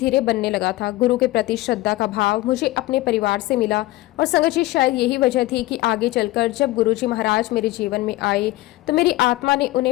बनने लगा था। गुरु के प्रति श्रद्धा का भाव मुझे अपने परिवार से मिला। और संगत जी, शायद यही वजह थी कि आगे चलकर जब गुरुजी महाराज मेरे जीवन में आए तो मेरी आत्मा ने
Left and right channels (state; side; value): quieter; right; 18.2 dB